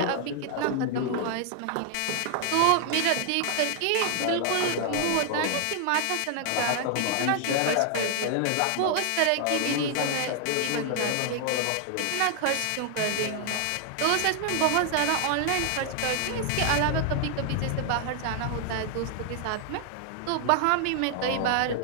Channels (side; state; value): both; different; correlation 0.00